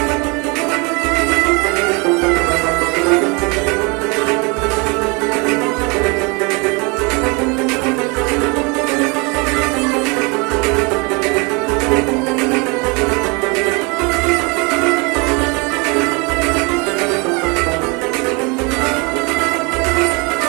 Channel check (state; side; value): quieter; left; 29.5 dB